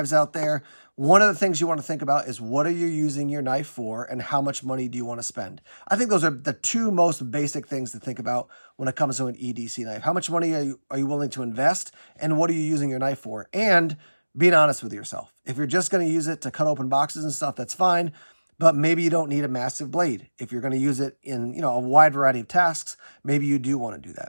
out there. One of the things you want to think about is what are you using your knife for and how much money do you want to spend? I think those are the two most basic things to think about when it comes to an EDC knife. How much money are you willing to invest and what are you using your knife for? And being honest with yourself. If you're just going to use it to cut open boxes and stuff, that's fine. But maybe you don't need a massive blade. If you're going to use it in, a wide variety of tasks, maybe you do want to do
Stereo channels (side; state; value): both; inverted; correlation -1.00